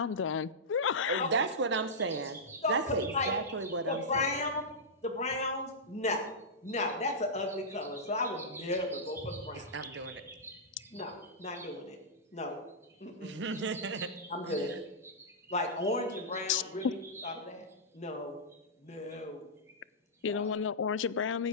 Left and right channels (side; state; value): both; normal; correlation -0.12